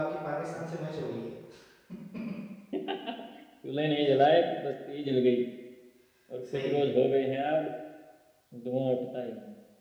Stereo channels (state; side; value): identical; both; correlation 1.00